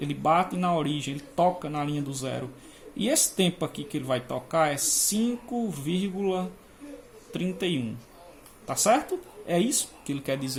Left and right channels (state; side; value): identical; both; correlation 1.00